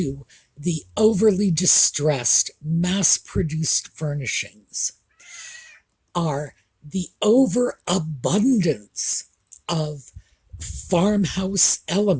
the overly distressed, mass-produced furnishings, are the overabundance of farmhouse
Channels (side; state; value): both; identical; correlation 1.00